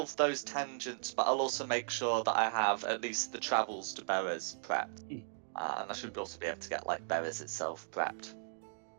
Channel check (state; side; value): silent; left; digital silence